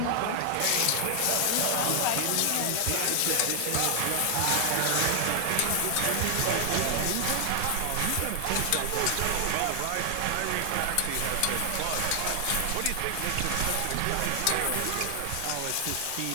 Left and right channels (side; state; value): both; different; correlation 0.00